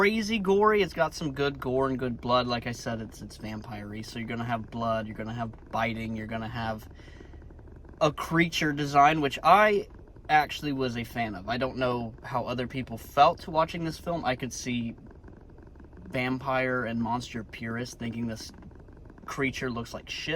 gory. It's got some good gore and good blood. Like I said, it's vampire-y, so you're gonna have blood, you're gonna have biting, you're gonna have a creature design, which I actually was a fan of. I don't know how other people felt watching this film. I could see vampire and monster purists thinking this creature looks like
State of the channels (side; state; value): both; identical; correlation 1.00